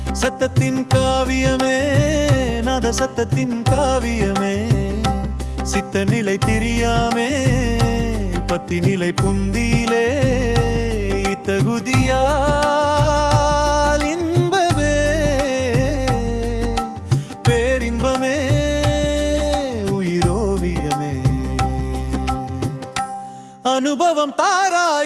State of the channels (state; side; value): identical; both; correlation 1.00